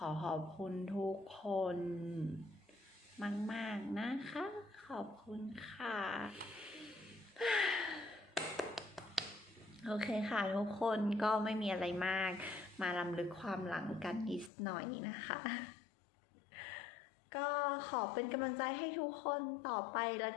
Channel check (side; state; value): right; drops out; at 14.5 s